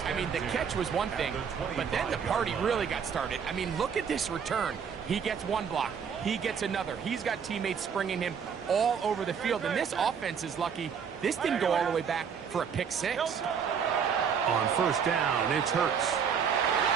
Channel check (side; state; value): left; quieter; 7.0 dB